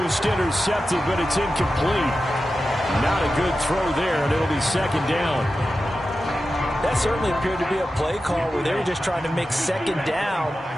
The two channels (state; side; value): normal; both; correlation 0.92